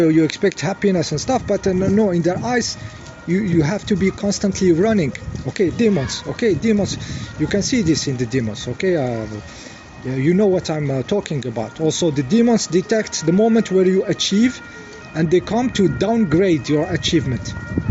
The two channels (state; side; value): identical; both; correlation 1.00